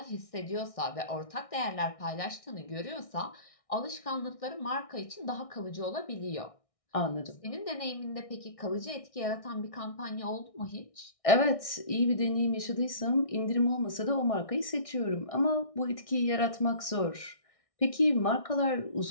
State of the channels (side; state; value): right; late; 1.6 ms